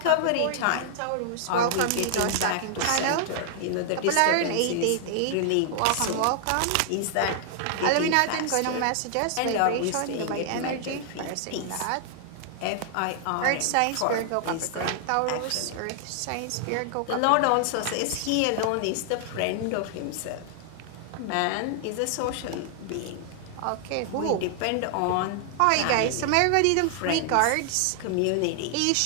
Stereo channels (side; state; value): both; different; correlation 0.00